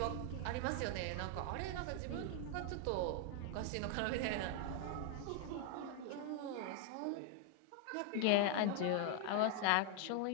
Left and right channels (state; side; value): different; both; correlation 0.00